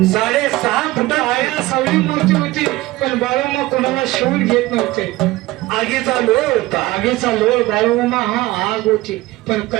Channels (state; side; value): quieter; left; 18.4 dB